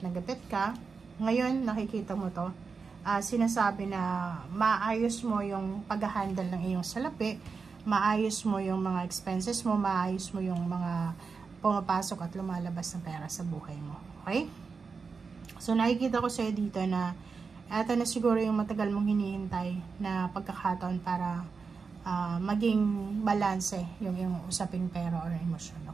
na gipit ka, ngayon, nakikita mo to, sinasabi na maayos mo yung pag-handle ng iyong salapi, maayos mo yung mga expenses mo, maayos mo yung mga pumapasok at lumalabas na pera sa buhay mo. Okay? So, nakikita ko sa'yo dito na ito na siguro yung matagal mong hinihintay na pagkakataon para maging balanse yung usaping pera or emosyon.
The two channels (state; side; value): quieter; left; 5.0 dB